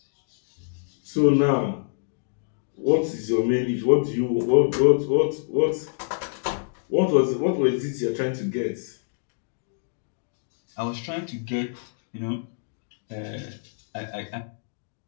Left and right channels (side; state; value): right; silent; digital silence